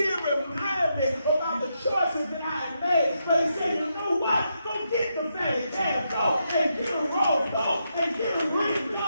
remind me about the choices that I had made. But He said, you know what? Go get the fatty calf. Go and get a robe. Go and get a ring.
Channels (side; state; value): both; inverted; correlation -0.82